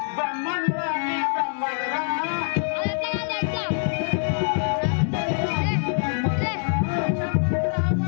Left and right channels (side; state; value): right; silent; digital silence